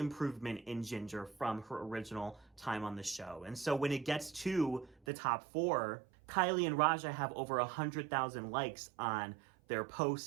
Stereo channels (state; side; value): drops out; left; at 5.0 s